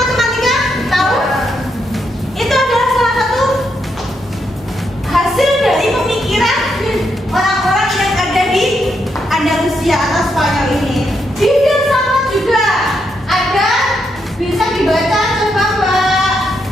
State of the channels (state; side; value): normal; both; correlation 0.80